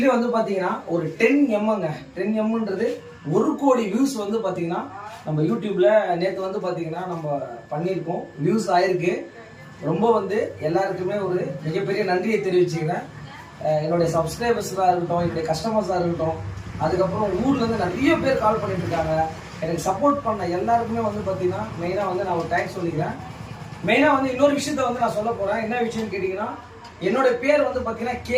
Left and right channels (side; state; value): both; identical; correlation 1.00